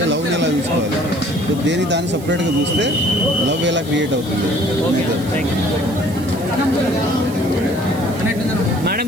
లవ్ని ఎలా చూసుకోవాలి, దేని దాన్ని సపరేట్ గా చూస్తే లవ్ ఎలా క్రియేట్ అవుతుంది. మేడం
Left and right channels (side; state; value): right; noise; hiss, 19 dB below the sound